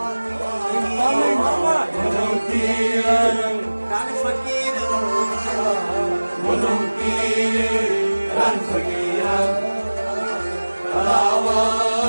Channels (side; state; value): both; inverted; correlation -1.00